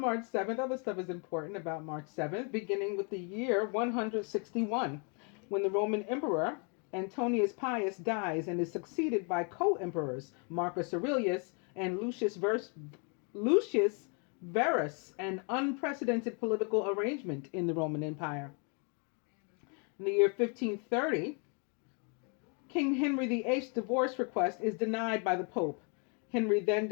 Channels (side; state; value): right; quieter; 37.2 dB